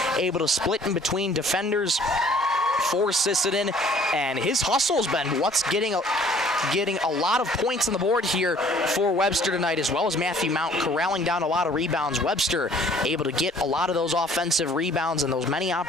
able to split in between defenders for Sisseton, and his hustle has been what's getting a lot of points on the board here for Webster tonight, as well as Matthew Mount corralling down a lot of rebounds. Webster able to get a lot of those offensive rebounds and those many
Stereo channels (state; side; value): normal; both; correlation 0.56